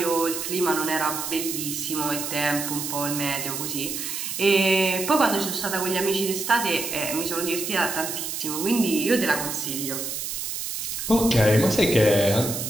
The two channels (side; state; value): right; noise; hiss, 4 dB below the sound